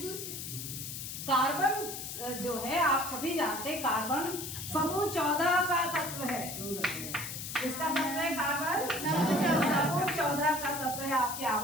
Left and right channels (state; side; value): noise; left; hiss, 7 dB below the sound